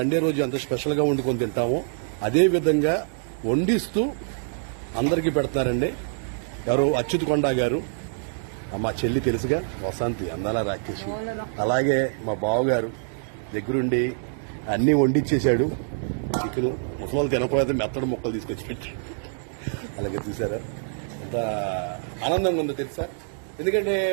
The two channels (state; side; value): silent; left; digital silence